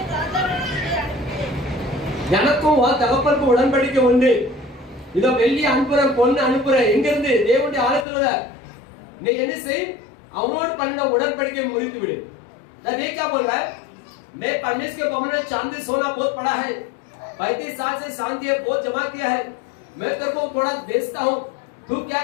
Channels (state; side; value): drops out; right; at 8.1 s